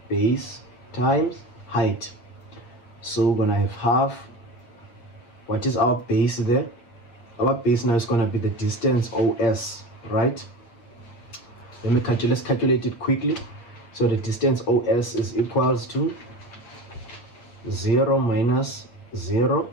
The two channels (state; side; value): late; right; 8.2 ms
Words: base times height. So we're gonna have half, what is our base there? our base now is going to be the distance OS, right? Let's calculate it quickly. So the distance OS is equals to 0 minus 0,